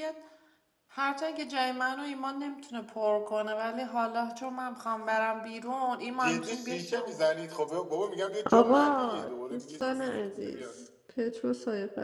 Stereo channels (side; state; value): both; identical; correlation 1.00